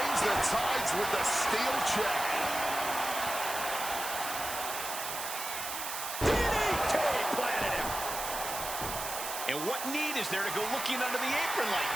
the tides with the steel chair. And what need is there to go looking under the apron like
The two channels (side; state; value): right; noise; hiss, 5 dB below the sound